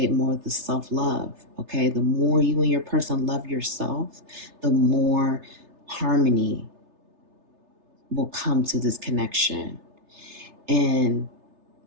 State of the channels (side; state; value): left; late; 3.3 ms